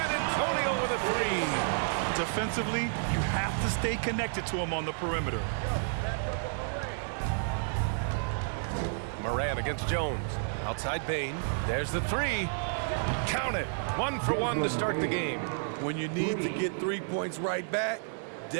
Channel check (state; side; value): silent; left; 57 dB below the other